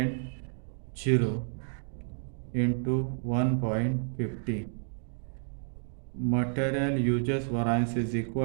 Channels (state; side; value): silent; left; digital silence